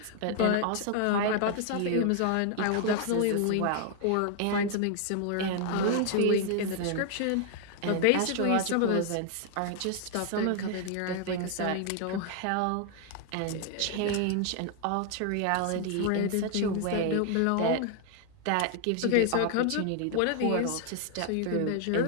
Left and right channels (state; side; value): different; both; correlation 0.00